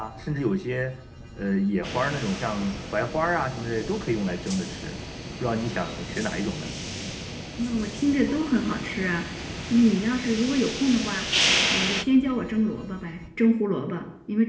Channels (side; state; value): both; identical; correlation 1.00